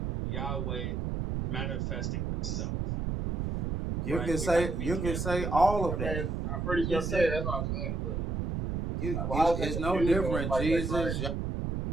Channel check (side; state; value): right; noise; rumble, 1 dB below the sound